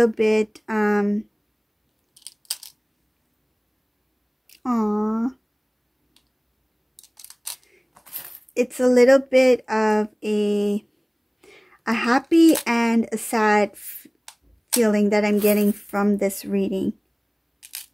bit, it's a little bit of a happy and a sad feeling that I'm getting from this reading.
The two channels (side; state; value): both; identical; correlation 1.00